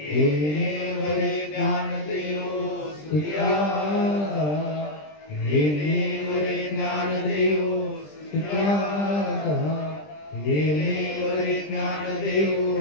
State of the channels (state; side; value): late; right; 20 ms